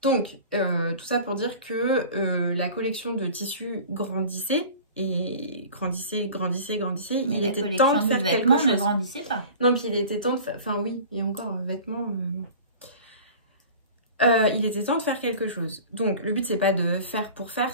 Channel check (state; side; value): inverted; both; correlation -0.40